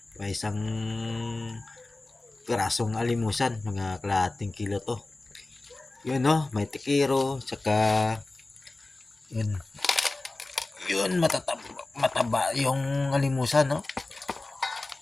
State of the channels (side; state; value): right; quieter; 3.1 dB